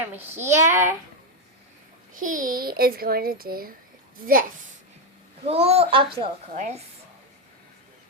here. He is going to do this. Cool obstacle course.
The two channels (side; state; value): both; normal; correlation 0.06